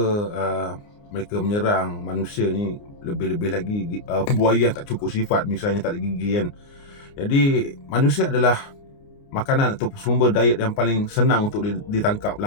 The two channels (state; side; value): late; right; 29 ms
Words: mereka menyerang manusia ni, lebih-lebih lagi buaya yang tak cukup sifat, misalnya tak ada gigi kan. Jadi manusia adalah makanan atau sumber diet yang paling senang untuk ditangkap